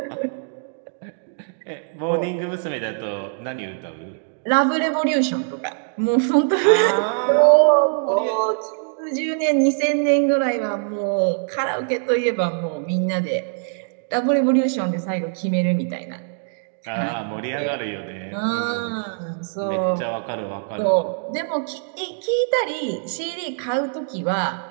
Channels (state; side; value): silent; left; digital silence